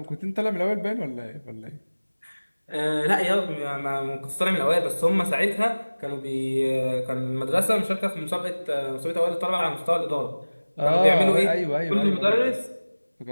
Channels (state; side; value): inverted; both; correlation -1.00